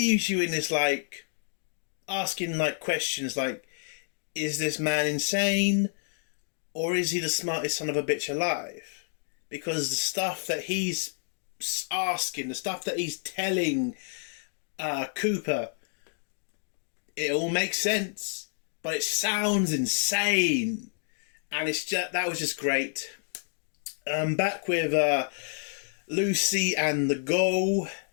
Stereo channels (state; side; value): silent; right; 58 dB below the other